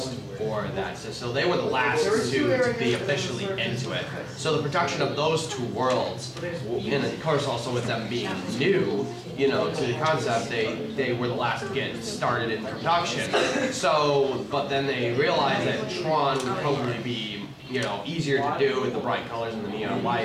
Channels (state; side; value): identical; both; correlation 1.00